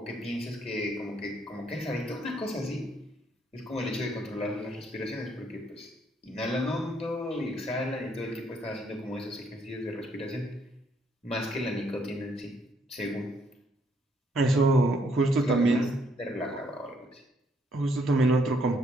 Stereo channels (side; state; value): both; normal; correlation 0.70